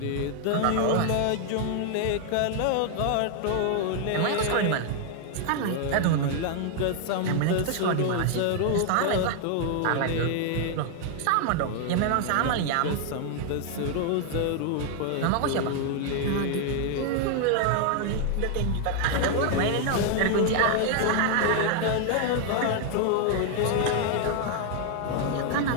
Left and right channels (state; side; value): different; both; correlation 0.00